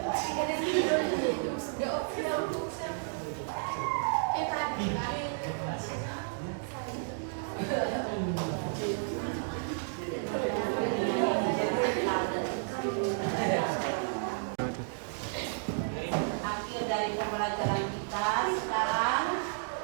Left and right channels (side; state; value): left; silent; digital silence